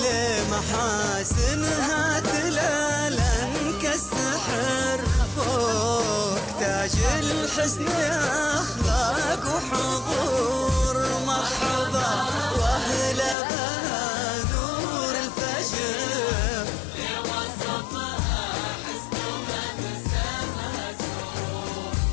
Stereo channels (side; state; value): right; drops out; at 13.4 s